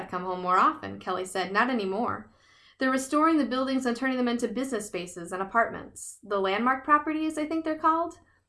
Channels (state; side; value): identical; both; correlation 1.00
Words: come home more often, Kelly said. Not anymore. They're restoring the buildings and turning them into business spaces and apartments. The landmark properties, I think they're called.